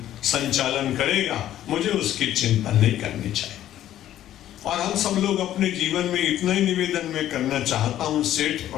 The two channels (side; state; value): right; quieter; 12.3 dB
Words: संचालन करेगा, मुझे उसकी चिंता नहीं करनी चाहिए। और हम सब लोग अपने जीवन में इतना ही निवेदन में करना चाहता हूं, सेठ